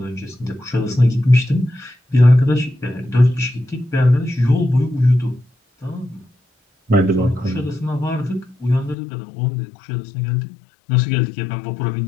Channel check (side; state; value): right; drops out; at 9.0 s